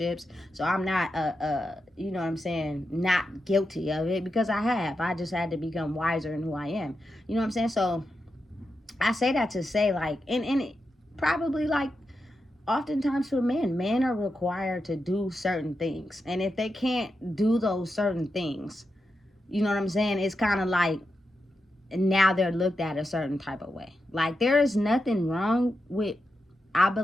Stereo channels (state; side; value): normal; both; correlation 0.88